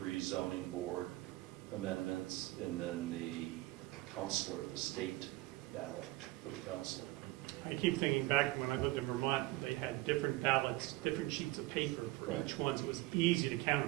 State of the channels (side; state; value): left; quieter; 19.4 dB